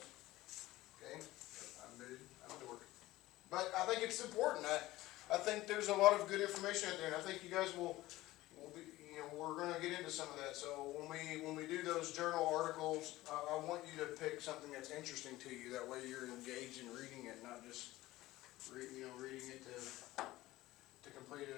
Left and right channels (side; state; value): right; quieter; 17.3 dB